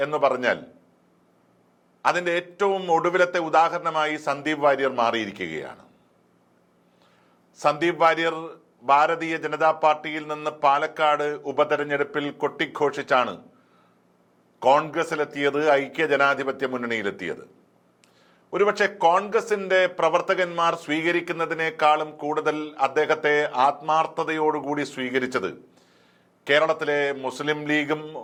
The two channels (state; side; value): identical; both; correlation 1.00